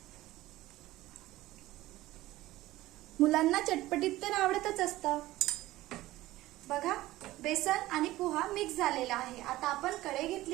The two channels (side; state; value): left; quieter; 16.9 dB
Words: मुलांना चटपटीत तर आवडतच असतं. बघा, बेसन आणि पोहा मिक्स झालेला आहे. आता आपण कढई